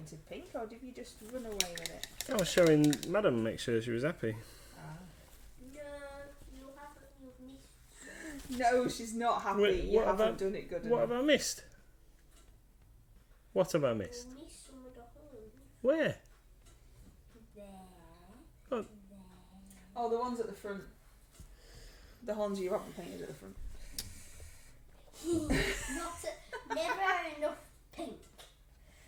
pink, or did you just run away with it? I was showing Madam, make sure she was happy. No, you haven't. You've missed. No, she's not happy. Wait, you haven't done it good enough. What have I missed? What have I missed? You missed some of the holes. Where? There. Oh. There. Oh, the ones at the front. The horns you haven't painted at the front. Never enough pink.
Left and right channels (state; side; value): identical; both; correlation 1.00